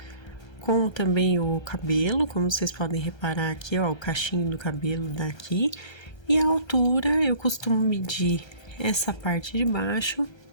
com também o cabelo, como vocês podem reparar aqui, ó, o cachinho do cabelo daqui. E a altura, eu costumo medir essa parte de baixo,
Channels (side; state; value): right; late; 1.3 ms